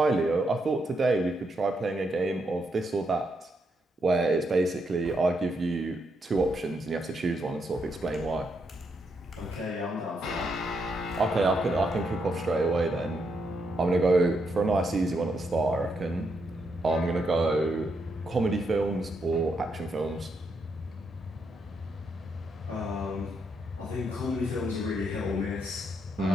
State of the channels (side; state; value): both; normal; correlation 0.79